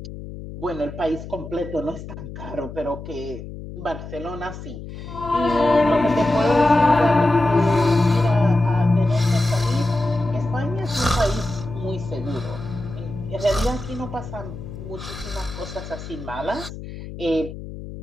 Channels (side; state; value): left; noise; hum, 11 dB below the sound